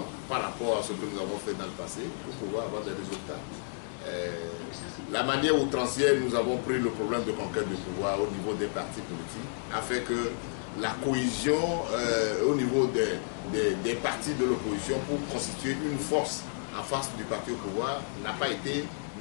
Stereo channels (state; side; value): silent; right; digital silence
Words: par rapport à ce que nous avons fait dans le passé pour pouvoir avoir des résultats. La manière outrancière, nous avons pris le problème de conquête de pouvoir au niveau des partis politiques, afin que la cohésion au niveau des partis de l'opposition pour constituer une force en face du parti au pouvoir n'a pas été